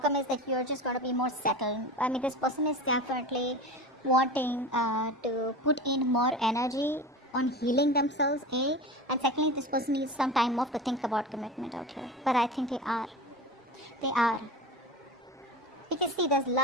is that you're just going to be more settled. I mean, this person is definitely wanting to put in more energy on healing themselves, A. And secondly, this person needs some time off to think about commitment out here. But I think they are. They are. Because see, there's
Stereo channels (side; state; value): both; normal; correlation 0.30